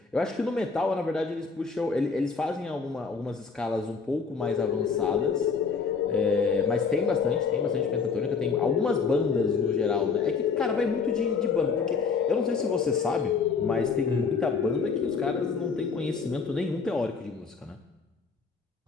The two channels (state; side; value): quieter; right; 5.2 dB